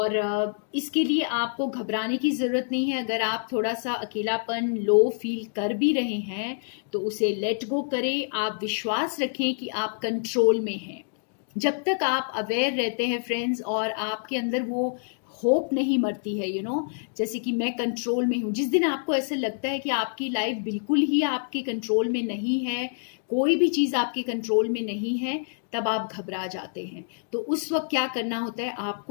इसके लिए आपको घबराने की ज़रूरत नहीं है। अगर आप थोड़ा सा अकेलापन लो फील कर भी रहे हैं तो उसे लेट गो करें। आप विश्वास रखें कि आप कंट्रोल में हैं। जब तक आप अवेयर रहते हैं फ्रेंड्स और आपके अंदर वो होप नहीं मरती है जैसे कि मैं कंट्रोल में हूँ। जिस दिन आपको ऐसा लगता है कि आपकी लाइफ बिल्कुल ही आपके कंट्रोल में नहीं है, कोई भी चीज़ आपके कंट्रोल में नहीं है, तब आप घबरा जाते हैं। तो उस वक्त क्या करना होता है,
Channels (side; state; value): right; silent; digital silence